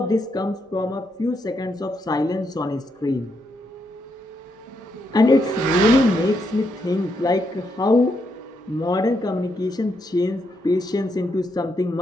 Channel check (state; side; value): normal; both; correlation 0.79